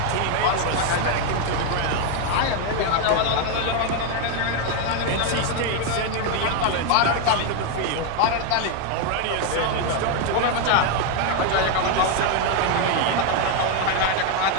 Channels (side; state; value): both; different; correlation 0.01